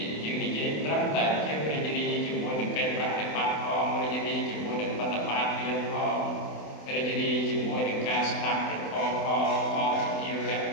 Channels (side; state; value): right; late; 28 ms